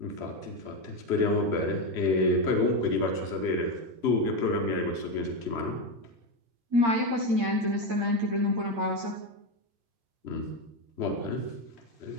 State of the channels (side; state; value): left; late; 8.7 ms